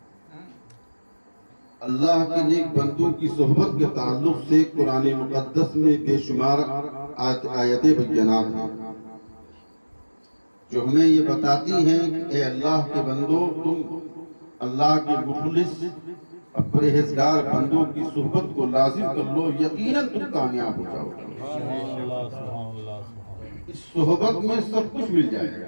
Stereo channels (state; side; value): inverted; both; correlation -1.00